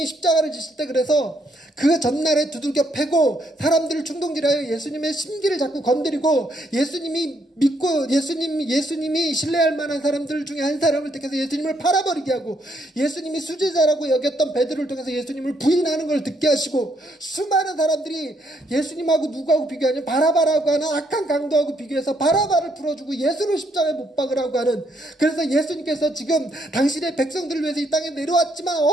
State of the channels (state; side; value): normal; both; correlation 0.73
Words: 십자가를 지실 때 그래서 그 전날에 두들겨 패고 사람들을 충동질하여 예수님의 심기를 자꾸 건드리고 예수님이 믿고 예수님이 신뢰할 만한 사람들 중에 한 사람을 택해서 예수님을 팔아버리게 하고 예수님이 수제자라고 여겼던 베드로를 통해서 예수님을 부인하는 걸 듣게 하시고 수많은 사람들이 예수님하고 누구하고 비교하냐면 바라바라고 하는 악한 강도하고 비교해서 바라바를 풀어주고 예수를 십자가에 못 박으라고 하는 그래서 예수님께서 지금 당신의 백성들을 위해서 이 땅에 내려왔지만